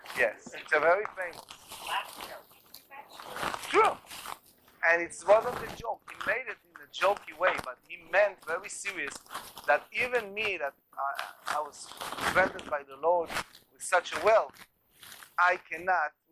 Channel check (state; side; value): identical; both; correlation 1.00